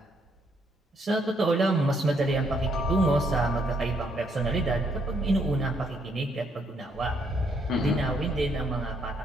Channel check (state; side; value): normal; both; correlation 0.71